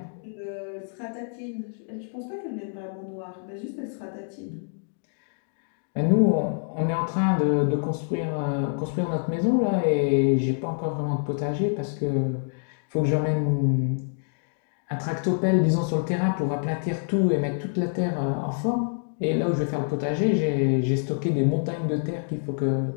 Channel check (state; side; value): silent; right; digital silence